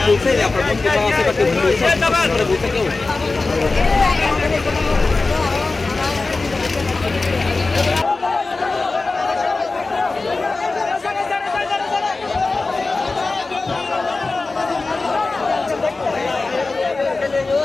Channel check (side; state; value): right; quieter; 3.6 dB